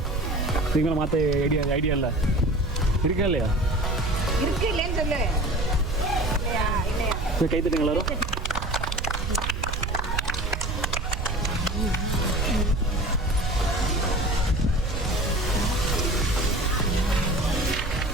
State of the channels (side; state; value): right; noise; rumble, 3 dB below the sound